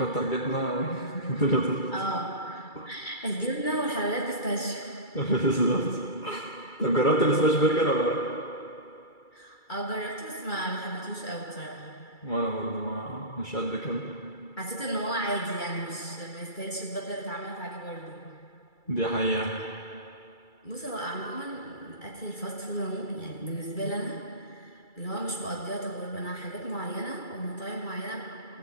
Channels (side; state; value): right; late; 2.3 ms